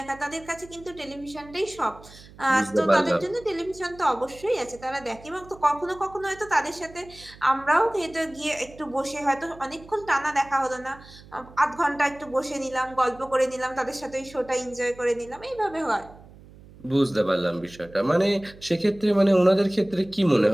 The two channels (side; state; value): right; noise; hum, 21 dB below the sound